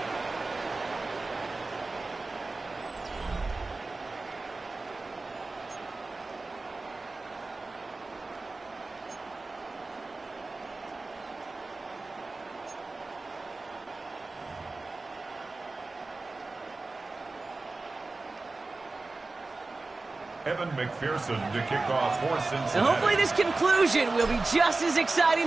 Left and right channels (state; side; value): quieter; left; 3.5 dB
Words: Evan McPherson to kick off for Cincinnati. And hopefully this conclusion will be just as